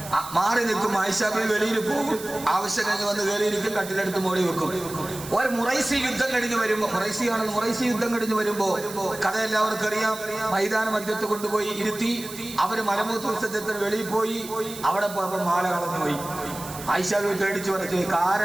മാറി നിൽക്കും. ആയിഷ ബീവി വെളിയിൽ പോകും. ആവശ്യം കഴിഞ്ഞ് വന്ന് കയറിയിരിക്കും. കട്ടിലെടുത്ത് മോടി വെക്കും. ഒരു മുറൈസി യുദ്ധം കഴിഞ്ഞ് വരുമ്പോ, മുറൈസി യുദ്ധം കഴിഞ്ഞ് വരുമ്പോ കഥ എല്ലാവർക്കും അറിയാം. മൈതാന മധ്യത്ത് കൊണ്ടുപോയി ഇരുത്തി. അവര് മലമൂത്ര വിസർജനത്തിന് വെളിയിൽ പോയി. അവിടെ പോയപ്പോ മാല കളഞ്ഞുപോയി. ആയിഷ ബീവി പേടിച്ചു പറഞ്ഞു.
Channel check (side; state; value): right; noise; hiss, 13 dB below the sound